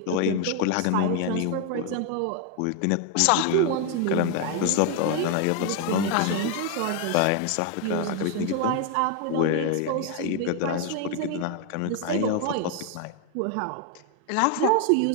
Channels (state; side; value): different; both; correlation 0.01